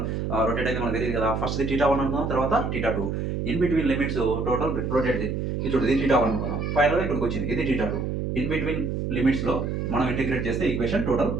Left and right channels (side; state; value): right; noise; hum, 2 dB below the sound